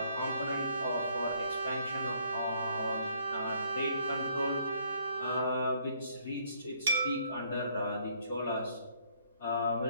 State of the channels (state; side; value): inverted; both; correlation -0.65